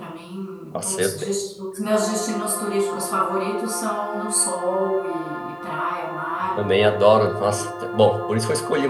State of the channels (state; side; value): identical; both; correlation 1.00